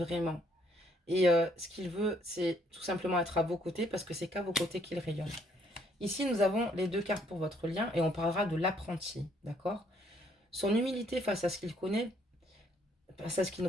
Et ce qu'il veut, c'est tout simplement être à vos côtés parce que c'est qu'à vos côtés qu'il rayonne. Ici, nous avons les 2 cartes pour votre lien et on parlera de l'apprenti, d'accord? Son humilité face à ce qu'il connaît, face à ce qu'il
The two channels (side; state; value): both; normal; correlation 0.67